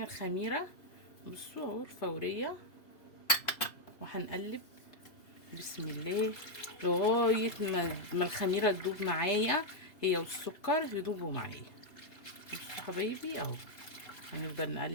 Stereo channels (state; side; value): late; right; 2.8 ms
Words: الخميرة، بصوا اهو الفورية، وهنقلب بسم الله لغاية ما الخميرة تدوب معايا، هي والسكر يدوبوا معايا. بصوا حبايبي اهو، هنفضل